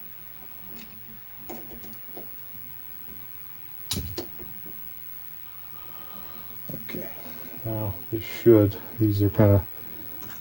Okay, now these are kind of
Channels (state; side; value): identical; both; correlation 1.00